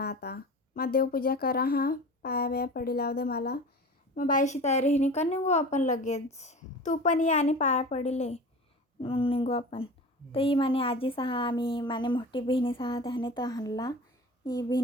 आता मग देवपूजा करा हा पाया बिया पडी लाव दे मला. मग बाईशी तयारी हिनी का निघू आपण लगेच. तू पण ये आणि पाया पडिले मग निघू आपण. तर ही माने आजी सहा आम्ही माने मोठी बहिणी सहा त्याने तर हाणला ही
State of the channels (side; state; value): both; normal; correlation 0.36